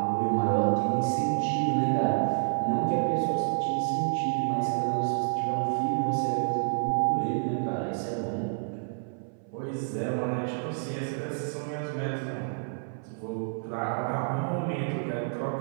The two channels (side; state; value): left; silent; 59 dB below the other